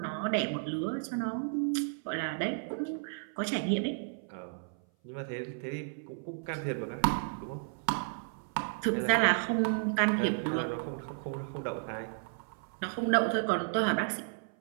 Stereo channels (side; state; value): left; silent; 56 dB below the other